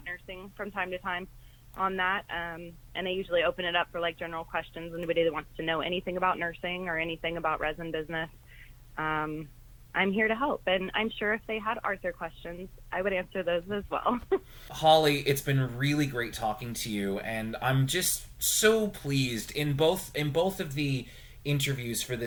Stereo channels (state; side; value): identical; both; correlation 1.00